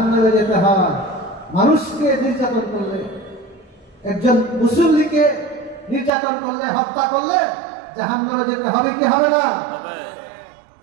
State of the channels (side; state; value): left; drops out; at 6.1 s